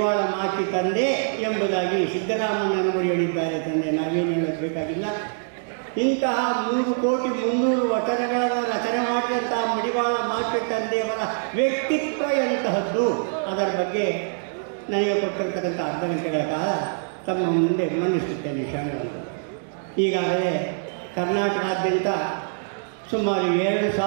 ಮಾತೆ ತಂದೆ ಎಂಬುದಾಗಿ ಸಿದ್ದರಾಮಯ್ಯನವರು ಹೇಳಿದ್ದಾರೆ. ತಂದೆ ನಾವೇನು ಹೇಳಬೇಕಾಗಿಲ್ಲ. ಇಂತಹ 3,300,000 ವಚನಗಳನ್ನು ರಚನೆ ಮಾಡಿದಂತಹ ಮಡಿವಾಳ ಮಾತೆ ತಂದೆಯವರ ವ್ಯಕ್ತಿತ್ವ ಎಂತಹದ್ದು, ಅದರ ಬಗ್ಗೆ ನನಗೆ ಕೊಟ್ಟಿರ್ತಕ್ಕಂಥ ಅರ್ಧ ಗಂಟೆಗಳ ಕಾಲ ತಮ್ಮ ಮುಂದೆ ಮಂಡಿಸುತ್ತೇನೆ. ಶರಣರು ಈಗಾಗಲೇ ಕರ್ನಾಟಕಾದ್ಯಂತ ಸುಮಾರು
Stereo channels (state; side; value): silent; left; digital silence